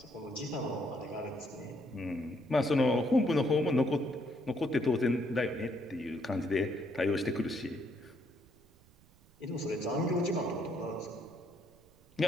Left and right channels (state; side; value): noise; right; rumble, 28 dB below the sound